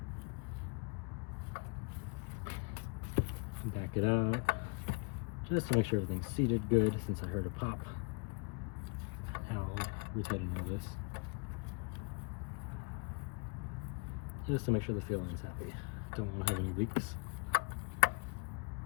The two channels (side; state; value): right; quieter; 32.9 dB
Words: Back it out, just to make sure everything's seated good, since I heard a pop. I'll retighten all this, just to make sure the fuel line's happy. Don't want to have any leaks.